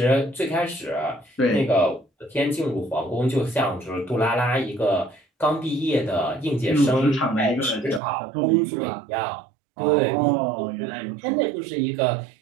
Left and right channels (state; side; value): drops out; left; at 8.0 s